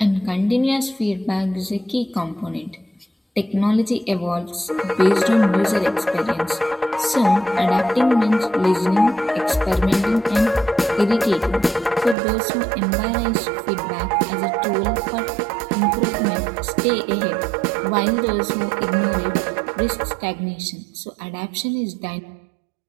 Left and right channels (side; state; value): left; drops out; at 12.2 s